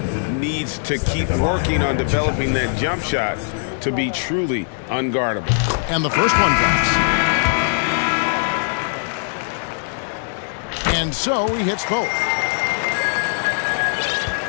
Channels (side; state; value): right; silent; digital silence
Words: needs to keep working on developing that jump shot to be truly unguardable. And the first one drops. And so he hits both.